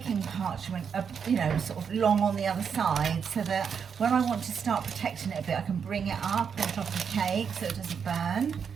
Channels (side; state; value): left; quieter; 6.9 dB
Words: parchment, sort of long on the other side so that when I want to start protecting it a bit, I can bring it up on top of the cake so it doesn't burn.